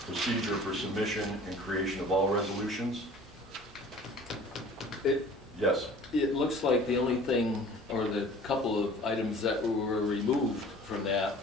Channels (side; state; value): both; normal; correlation 0.46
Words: procedure for submission and creation of all resolutions. Yes. It looks like the only thing, or the couple of items that were removed from that